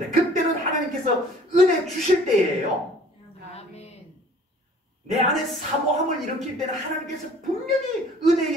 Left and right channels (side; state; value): both; normal; correlation 0.52